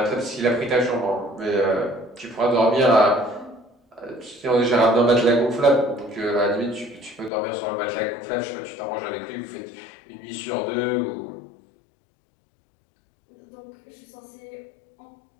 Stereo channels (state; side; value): drops out; right; at 7.3 s